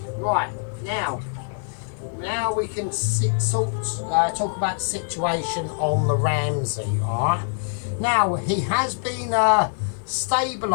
Right, now we can talk about the situation on the Ramsay, alright? Now he has been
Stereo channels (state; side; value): silent; right; 63 dB below the other